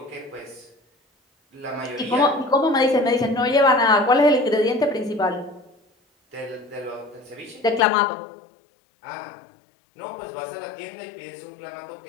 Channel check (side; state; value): right; drops out; at 7.9 s